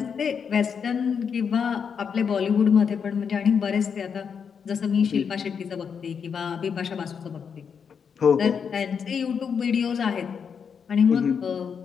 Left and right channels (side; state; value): right; quieter; 6.7 dB